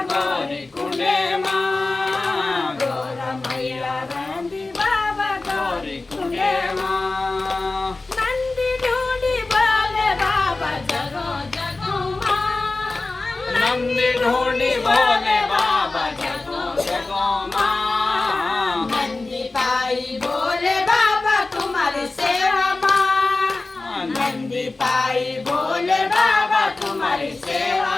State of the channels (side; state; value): right; quieter; 3.4 dB